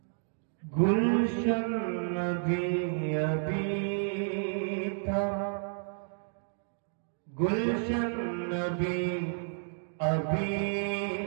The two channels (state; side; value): silent; left; digital silence